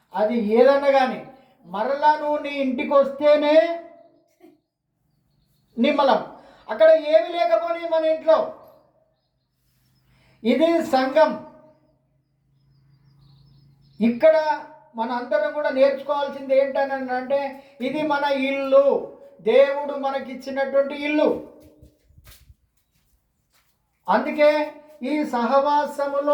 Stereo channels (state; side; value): identical; both; correlation 1.00